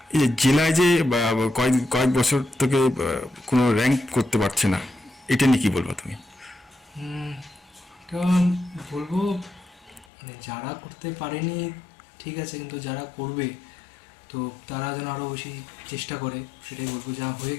এই যে জেলায় যে কয়েক বছর থেকে কোনো র্যাঙ্ক করতে পারছে না, এটা নিয়ে কি বলবো তুমি? এটা বলবো মানে যারা করতে পারেনি ঠিক আছে, কিন্তু যারা করবে তো তারা যেন আরও বেশি চেষ্টা করে, সেটাই বলবো। যা হয়ে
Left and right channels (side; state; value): right; drops out; at 10.1 s